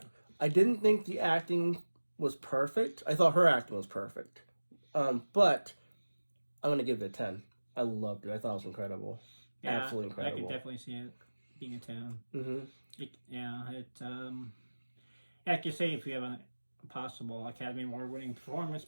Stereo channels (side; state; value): both; inverted; correlation -1.00